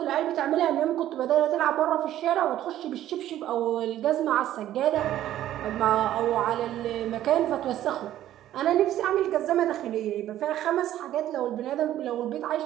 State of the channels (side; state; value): left; quieter; 12.7 dB